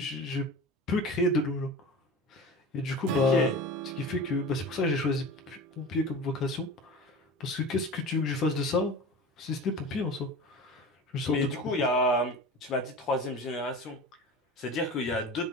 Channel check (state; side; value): normal; both; correlation 0.34